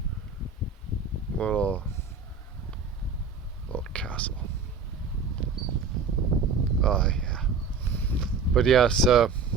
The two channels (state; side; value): quieter; left; 4.9 dB